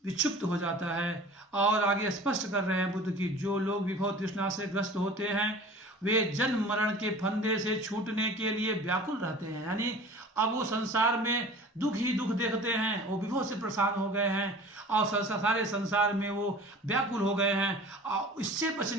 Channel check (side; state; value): both; normal; correlation 0.42